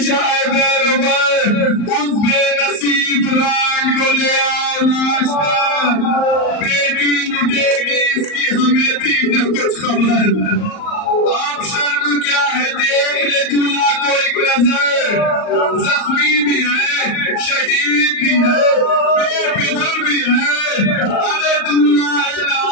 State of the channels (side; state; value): right; late; 38 ms